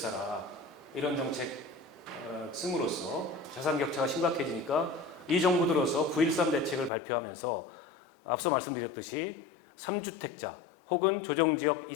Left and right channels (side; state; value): right; drops out; at 6.9 s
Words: 이런 정책 씀으로써 자산 격차가 심각해지니까 이 정부 들어서 9.13 대책을 발표하면서 앞서 말씀드렸듯이 3주택자 혹은 조정지역